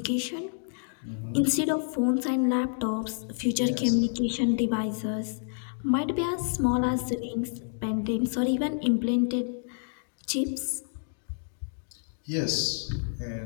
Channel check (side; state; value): right; silent; digital silence